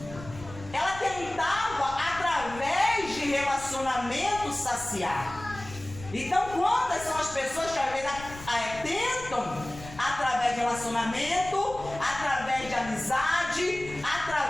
Ela tentava, através de relacionamento, saciar. Então, quantas são as pessoas que às vezes tentam, através de relacionamento, através de amizade,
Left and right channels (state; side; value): noise; left; rumble, 15 dB below the sound